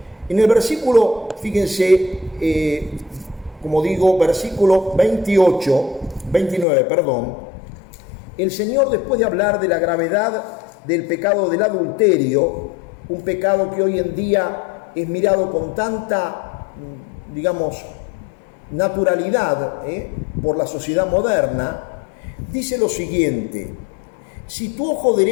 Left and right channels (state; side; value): drops out; right; at 6.7 s